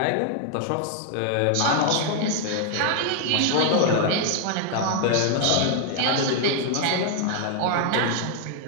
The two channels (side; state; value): both; different; correlation 0.00